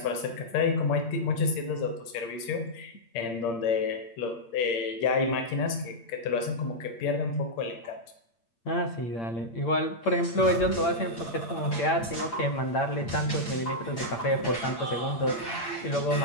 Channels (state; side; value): late; right; 8.7 ms